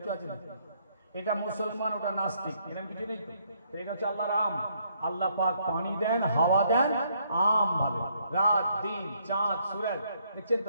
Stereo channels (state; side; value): inverted; both; correlation -0.70